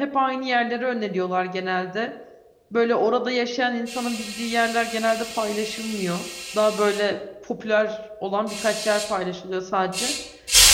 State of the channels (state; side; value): identical; both; correlation 1.00